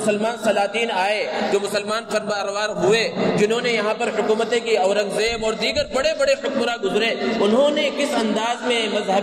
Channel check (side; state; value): both; identical; correlation 1.00